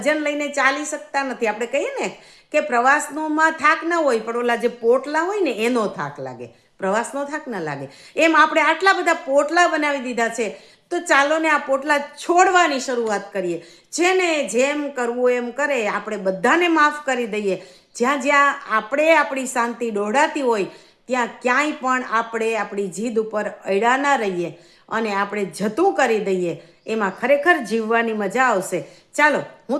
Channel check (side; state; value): both; identical; correlation 1.00